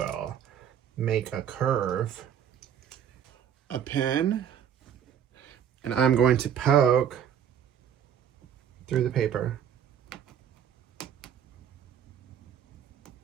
make a curve, a pin, and I'm going to poke through the paper.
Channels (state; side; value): quieter; left; 9.0 dB